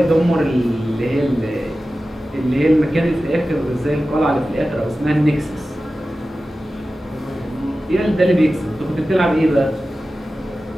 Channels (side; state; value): both; normal; correlation 0.94